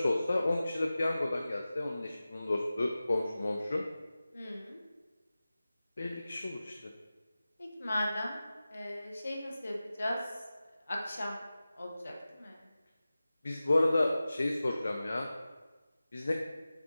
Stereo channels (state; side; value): inverted; both; correlation -0.96